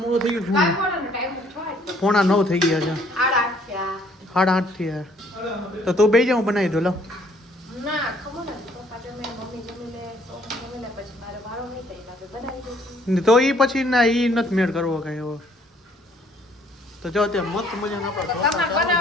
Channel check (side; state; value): both; normal; correlation 0.62